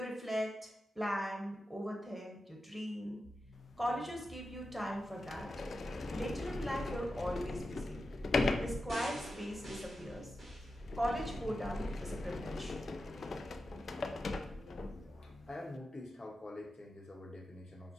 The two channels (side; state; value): both; normal; correlation 0.91